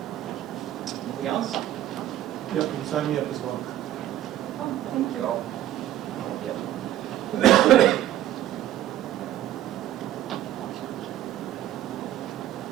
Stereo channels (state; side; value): quieter; left; 12.8 dB